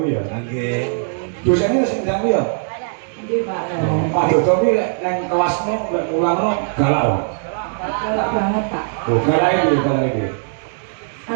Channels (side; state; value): left; silent; 66 dB below the other